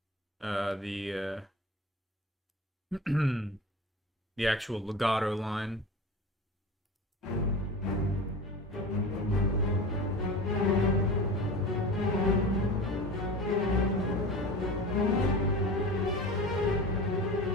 the the actual legato line.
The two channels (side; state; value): both; normal; correlation 0.33